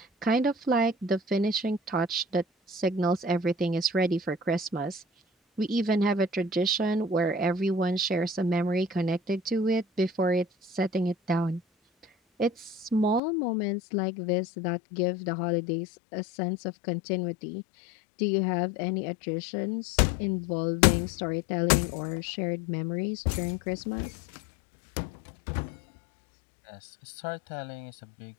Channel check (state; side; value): drops out; right; at 13.2 s